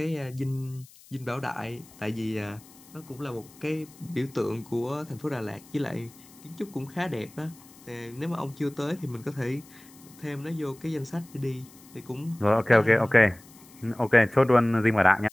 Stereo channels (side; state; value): left; noise; hiss, 23 dB below the sound